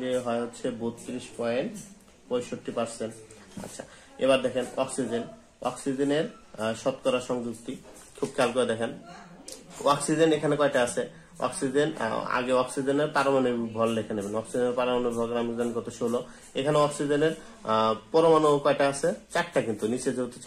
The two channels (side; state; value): both; identical; correlation 1.00